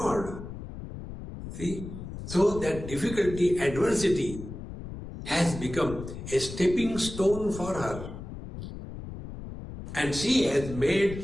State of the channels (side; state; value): left; noise; rumble, 10 dB below the sound